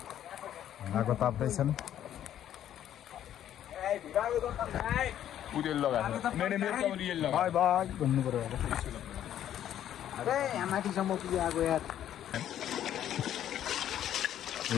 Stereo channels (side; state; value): right; quieter; 11.0 dB